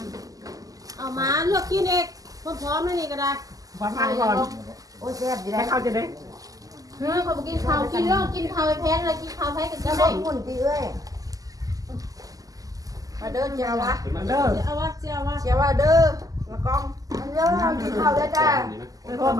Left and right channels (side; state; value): left; late; 0.17 ms